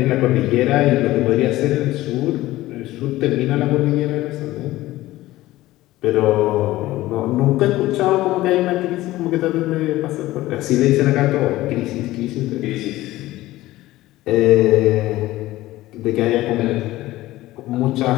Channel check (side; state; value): right; quieter; 16.8 dB